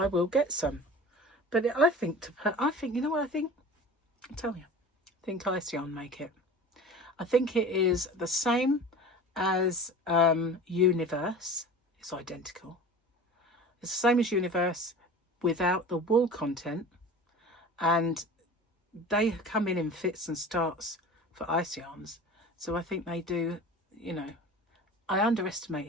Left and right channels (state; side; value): normal; both; correlation 0.37